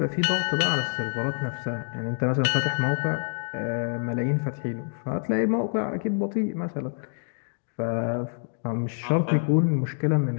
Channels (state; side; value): silent; right; digital silence